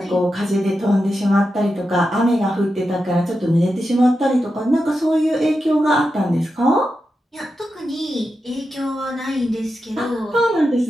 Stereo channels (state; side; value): normal; both; correlation 0.89